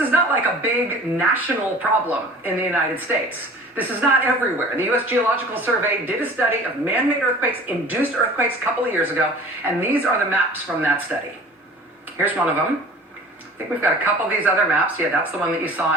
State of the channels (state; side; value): normal; both; correlation 0.44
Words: is not like a big national problem in the United States. This is not everywhere. The U.S. Geological Survey did a study of man-made earthquakes, induced earthquakes a couple of years ago, and these are the maps from that study. Here's one of them. I think we've got a couple of these other maps. Yeah, that's the one that you